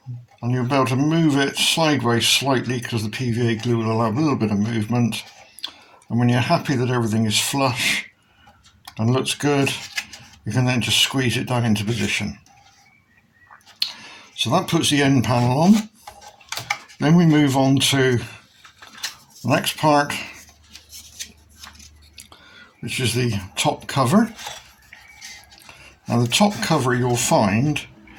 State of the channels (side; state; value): both; identical; correlation 1.00